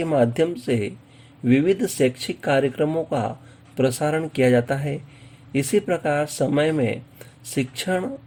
माध्यम से विविध शैक्षिक कार्यक्रमों का प्रसारण किया जाता है। इसी प्रकार समय में शिक्षण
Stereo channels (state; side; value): identical; both; correlation 1.00